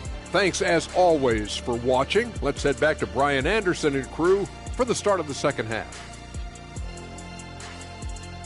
Thanks, as always, for watching. Let's head back to Brian Anderson and crew for the start of the second half.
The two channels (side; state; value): both; identical; correlation 1.00